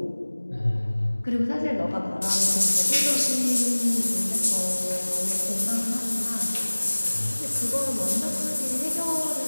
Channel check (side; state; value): both; inverted; correlation -1.00